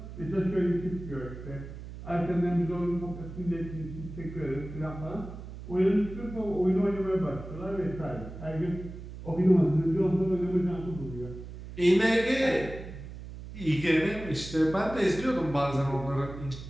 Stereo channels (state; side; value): noise; right; hum, 12 dB below the sound